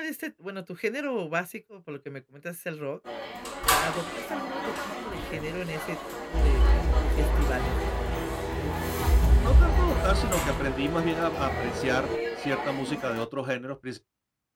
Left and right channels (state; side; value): identical; both; correlation 1.00